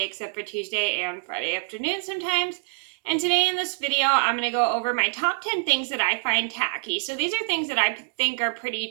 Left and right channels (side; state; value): left; silent; 61 dB below the other